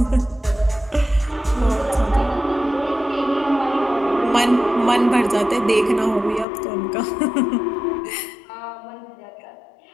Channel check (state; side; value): drops out; right; at 6.5 s